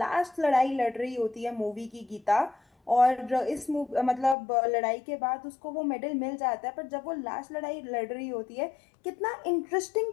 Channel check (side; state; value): right; drops out; at 4.4 s